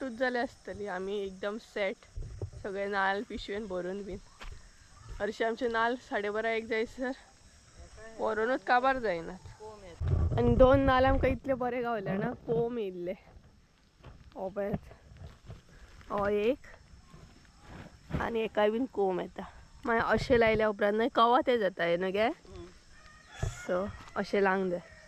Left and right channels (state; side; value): identical; both; correlation 1.00